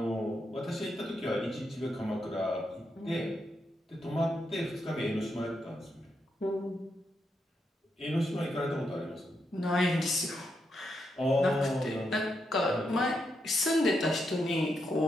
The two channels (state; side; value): normal; both; correlation 0.82